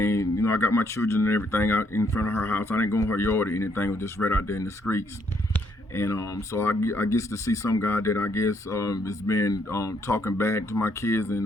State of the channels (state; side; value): normal; both; correlation 0.70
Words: I got my children and everything out in front of her house. I didn't go in her yard or anything. It was just right out there in the streets. And so I guess to see some guy that I guess has been talking bad to my kids,